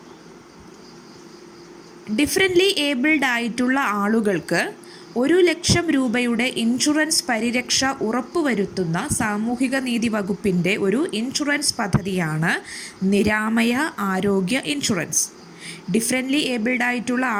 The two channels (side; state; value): both; identical; correlation 1.00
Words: ഡിഫറൻ്റ്ലി ഏബിൾഡ് ആയിട്ടുള്ള ആളുകൾക്ക് 1,00,000 രൂപയുടെ ഇൻഷുറൻസ് പരിരക്ഷ ഉറപ്പുവരുത്തുന്ന സാമൂഹിക നീതി വകുപ്പിൻ്റെ ഒരു ഇൻഷുറൻസ് പദ്ധതിയാണ് നിരാമയ ആരോഗ്യ ഇൻഷുറൻസ്. ഡിഫറൻ്റ്ലി ഏബിൾഡ് ആയിട്ടുള്ള